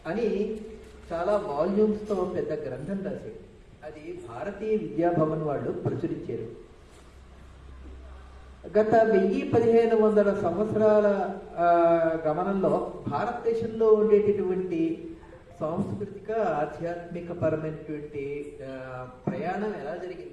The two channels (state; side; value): identical; both; correlation 1.00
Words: అని చాలా వాల్యూమ్స్తో పెద్ద గ్రంథం రాశాడు. అది భారతీయ విద్యాభవన్ వాళ్ళు ప్రచురించారు. గత 1000-1500 సంవత్సరాల గమనంలో భారతదేశంలో ఉండేటటువంటి సాంస్కృతిక ఆధ్యాత్మిక పరమైనటువంటి ప్రయాణం ఎలా